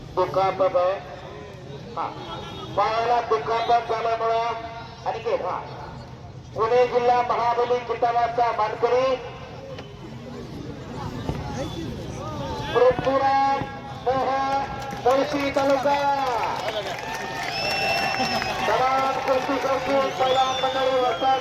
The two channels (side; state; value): both; identical; correlation 1.00